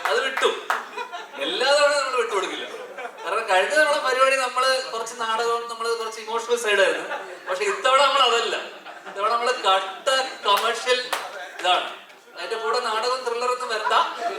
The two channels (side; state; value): both; identical; correlation 1.00